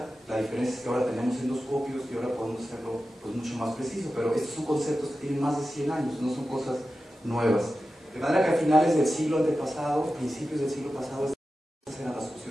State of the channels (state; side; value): normal; both; correlation 0.93